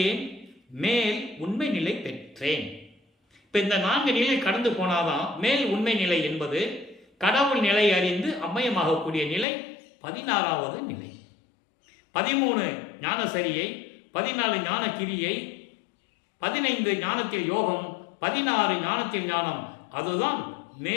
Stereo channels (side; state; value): right; drops out; at 9.5 s